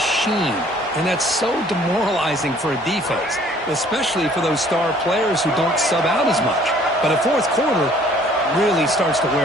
and that's so demoralizing for a defense, especially for those star players who don't sub out as much. But a fourth quarter really starts to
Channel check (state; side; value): normal; both; correlation 0.57